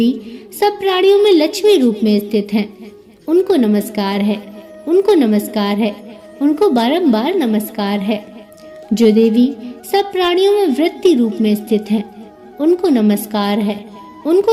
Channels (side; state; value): both; identical; correlation 1.00